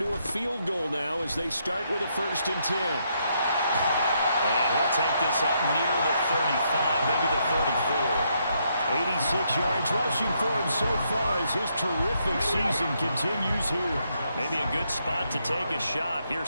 a field goal now as they start with a 1st and 10. And he'll take this up near the 35, maybe the 34. 86 yards rushing for him so far as his terrific season continues here. Maybe a good spot to take a shot. Here's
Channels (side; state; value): both; inverted; correlation -0.76